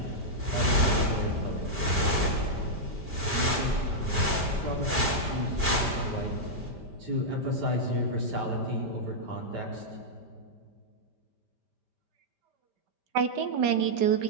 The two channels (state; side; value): late; left; 5.1 ms